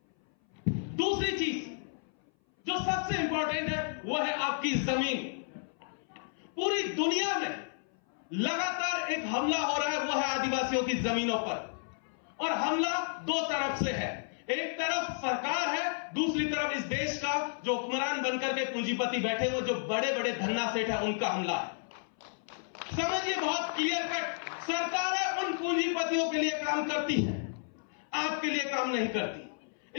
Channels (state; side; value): silent; right; 56 dB below the other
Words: दूसरी चीज जो सबसे इंपॉर्टेंट है वो है आपकी जमीन। पूरी दुनिया में लगातार एक हमला हो रहा है, वो है आदिवासियों की जमीनों पर। और हमला दो तरफ से है, एक तरफ सरकार है, दूसरी तरफ इस देश का जो हुक्मरान बनकर के पूंजीपति बैठे हुए जो बड़े बड़े धन्ना सेठ है, उनका हमला है। समझिए बहुत क्लियर कट, सरकार है उन पूंजीपतियों के लिए काम करती है, आपके लिए काम नहीं